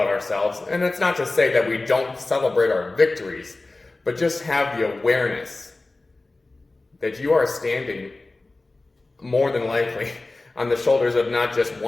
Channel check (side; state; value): right; quieter; 3.1 dB